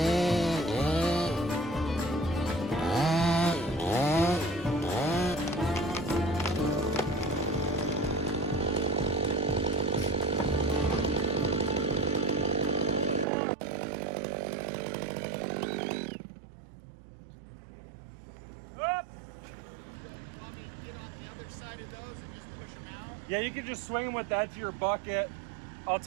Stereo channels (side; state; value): left; drops out; at 13.2 s